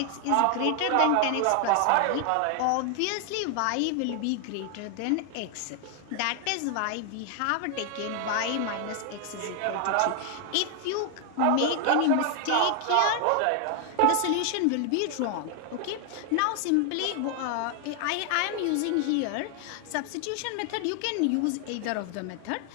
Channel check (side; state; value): both; different; correlation 0.00